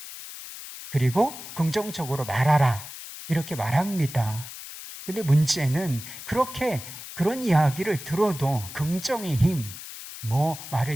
그리고 긍정적으로 말하라, 이렇게 말합니다. 근데 문제는 그런 이야기를 들어도 긍정의 힘,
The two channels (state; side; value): noise; left; hiss, 12 dB below the sound